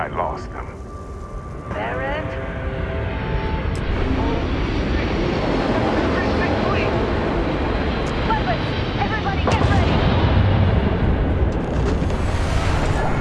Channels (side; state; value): both; identical; correlation 1.00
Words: lost them. Barrett? Weapons! Everybody get ready!